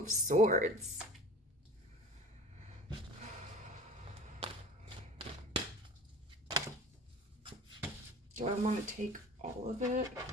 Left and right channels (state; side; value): normal; both; correlation 0.40